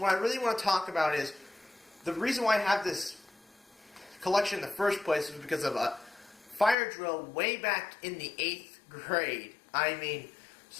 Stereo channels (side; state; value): right; drops out; at 6.8 s